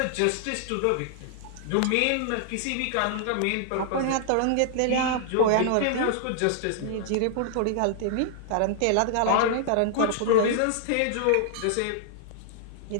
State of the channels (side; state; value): both; different; correlation -0.01